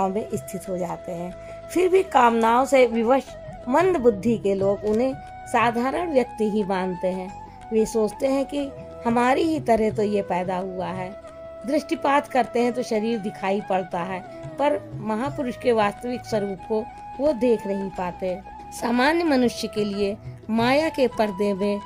में स्थित हो जाते हैं। फिर भी कामनाओं से विवश मंद बुद्धि के लोग उन्हें साधारण व्यक्ति ही मानते हैं। वे सोचते हैं कि हमारी ही तरह तो ये पैदा हुआ है। दृष्टिपात करते हैं तो शरीर दिखाई पड़ता है, पर महापुरुष के वास्तविक स्वरूप को वो देख नहीं पाते। सामान्य मनुष्य के लिए माया के पर्दे में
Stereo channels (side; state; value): both; identical; correlation 1.00